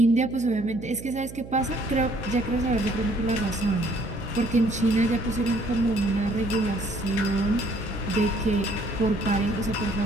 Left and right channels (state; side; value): noise; right; hum, 14 dB below the sound